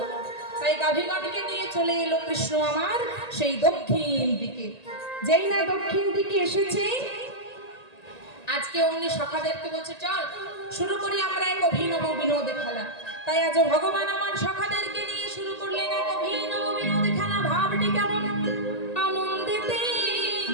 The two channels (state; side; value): late; right; 1.9 ms